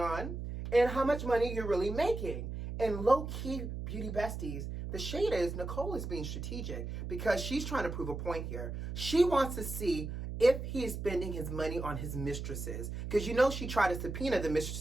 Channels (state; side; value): noise; right; hum, 6 dB below the sound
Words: and how much money you're really making. And low-key, beauty besties, the shade is Nicole is being strategic because she's trying to prove a point here. She wants to see if he is spending his money on his mistresses. Because you know she tried to subpoena the